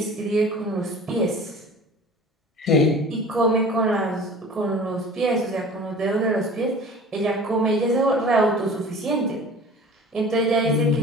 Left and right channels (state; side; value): normal; both; correlation 0.42